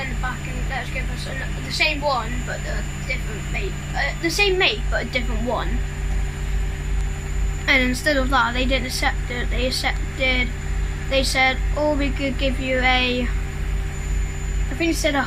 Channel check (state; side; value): identical; both; correlation 1.00